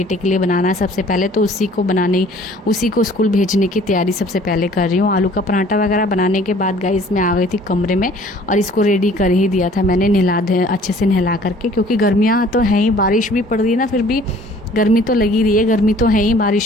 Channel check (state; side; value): normal; both; correlation 0.53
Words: के लिए बनाना है सबसे पहले। तो उसी को स्कूल भेजने की तैयारी सबसे पहले कर रही हूँ। आलू का पराठा वगैरह बनाने के बाद गाइस मैं आ गई थी कमरे में और इसको रेडी कर ही दिया था मैंने अच्छे से नहला करके, क्योंकि गर्मियाँ तो हैं ही, बारिश भी पड़ रही है ना, फिर भी गर्मी तो लगी रही है, गर्मी तो है ही,